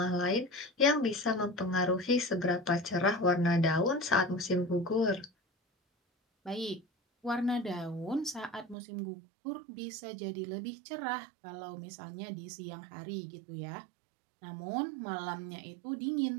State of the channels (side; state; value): left; drops out; at 8.8 s